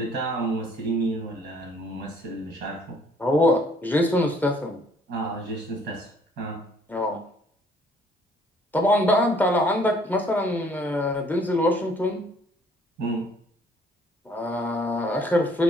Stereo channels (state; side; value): normal; both; correlation 0.61